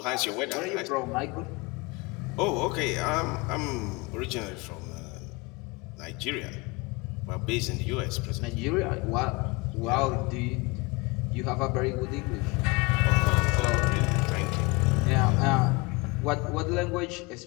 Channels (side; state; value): right; quieter; 25.7 dB